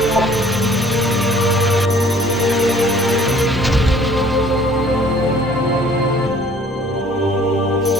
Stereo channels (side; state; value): both; normal; correlation 0.55